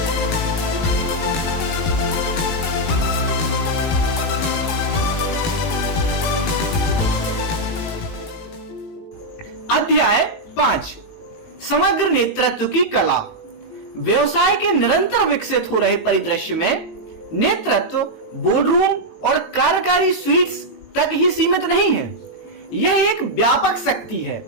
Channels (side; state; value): right; late; 19 ms